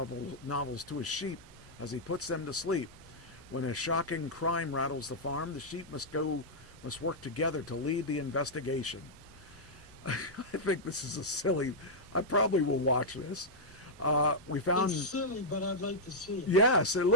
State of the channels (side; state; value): both; normal; correlation -0.07